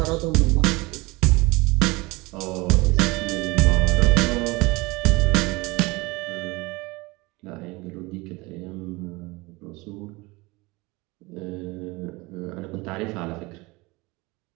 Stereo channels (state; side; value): quieter; left; 23.5 dB